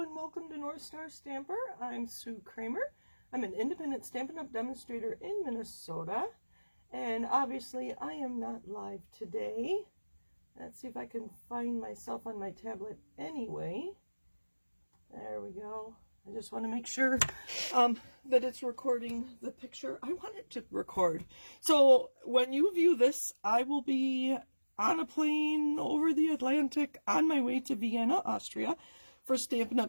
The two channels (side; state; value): both; inverted; correlation -1.00